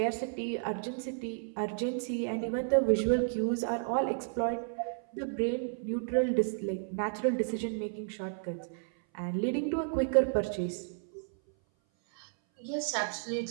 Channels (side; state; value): left; silent; 56 dB below the other